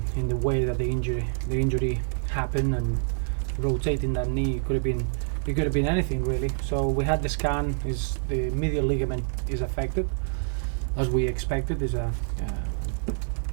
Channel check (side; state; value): left; silent; digital silence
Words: the way that the injury happened, and rotating that knee. It could have been anything really. So we had the scan. Is the medial ligament is affected, as we expected. Is